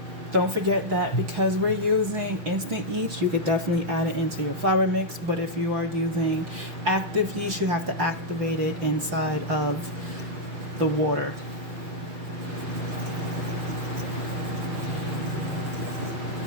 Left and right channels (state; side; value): late; left; 6.0 ms